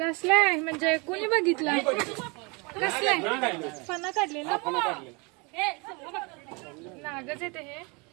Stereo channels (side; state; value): left; quieter; 29.6 dB